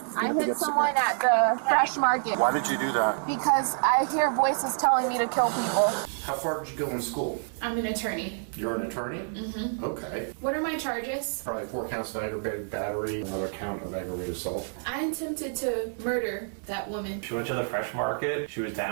I hit someone at the fresh market. Why did you do that? Because I hear voices telling me to kill people. How far did you go in school? I'm an attorney. You're an attorney? Mm-hmm. Okay. What are my charges? Probably 4 counts of aggravated battery, another count of aggravated assault. I attempted to murder that woman. She went to the fresh market. She was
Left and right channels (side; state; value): left; silent; digital silence